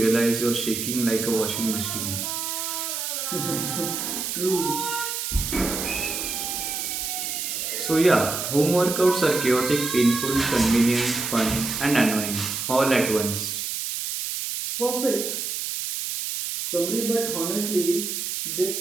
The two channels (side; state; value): right; noise; hiss, 3 dB below the sound